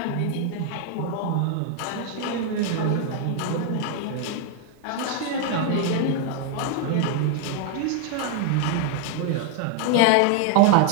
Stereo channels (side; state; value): both; different; correlation 0.00